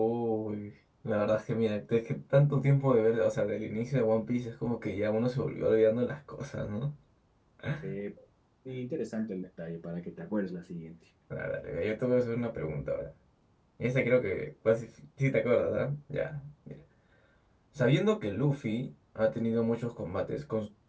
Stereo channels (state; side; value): identical; both; correlation 1.00